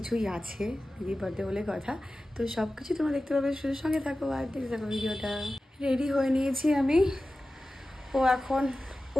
আছে দিদির বার্থডে বলে কথা। তো সব কিছু তোমরা দেখতে পাবে, শুধু সঙ্গে থাকো আর দেখতে থাকো ভিডিওটা। রেডি হয়ে নিয়েছি আমি। ও এখন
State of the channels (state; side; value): normal; both; correlation 0.95